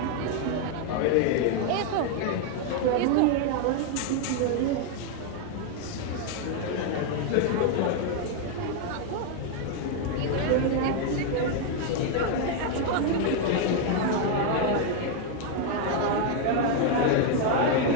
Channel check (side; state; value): both; different; correlation 0.01